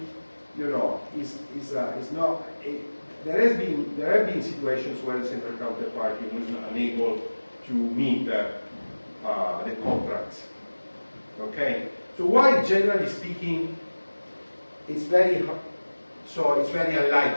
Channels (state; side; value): inverted; both; correlation -1.00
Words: is not, there have been situations where the central counterparty was unable to meet the contracts. Okay? So while generally speaking, it's very